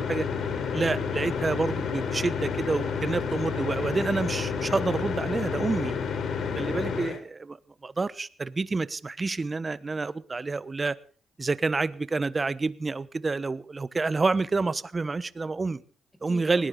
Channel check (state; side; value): normal; both; correlation 0.87